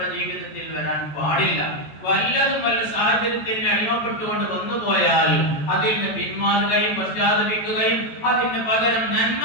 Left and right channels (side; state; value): right; late; 14 ms